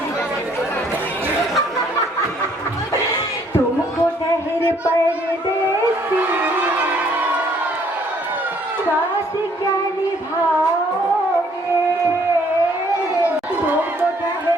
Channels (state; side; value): normal; both; correlation 0.63